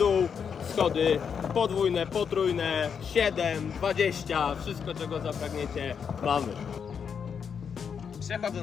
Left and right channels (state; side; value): quieter; right; 6.9 dB